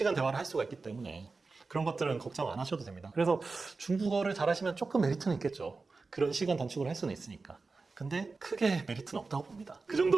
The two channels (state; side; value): quieter; left; 4.0 dB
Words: 대화를 할 수가 있기 때문에 그런 것들은 걱정 안 하셔도 됩니다. 그래서 중국어를 잘하시면 조금 메리트는 있겠죠. 그런 시간 단축을 할 수는 있으니까. 근데 크게 메리트는 없다고 봅니다. 그